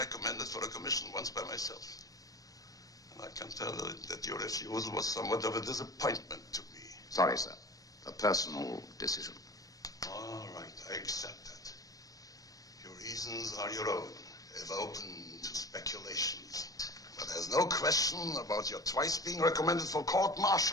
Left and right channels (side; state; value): right; late; 0.17 ms